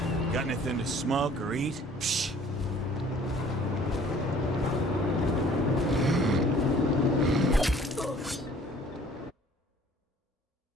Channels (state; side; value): normal; both; correlation 0.54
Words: Got anything to smoke or eat? Psh.